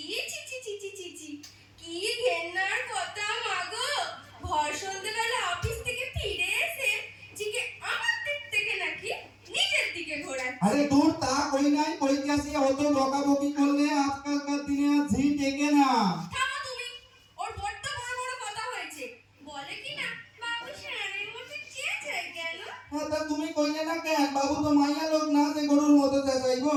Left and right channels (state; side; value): identical; both; correlation 1.00